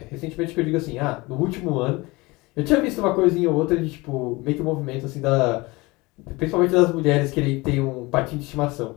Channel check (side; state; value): right; quieter; 23.2 dB